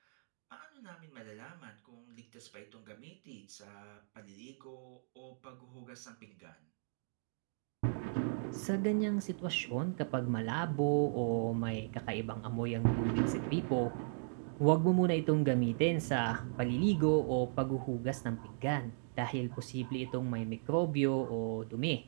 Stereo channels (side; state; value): left; silent; digital silence